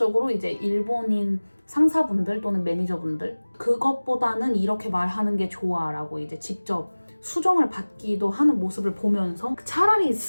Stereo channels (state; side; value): inverted; both; correlation -1.00